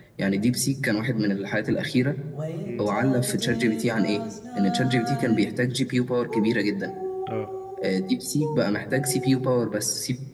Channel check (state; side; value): identical; both; correlation 1.00